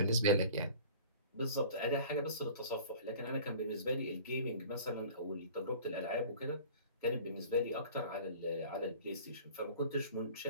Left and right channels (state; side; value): inverted; both; correlation -0.44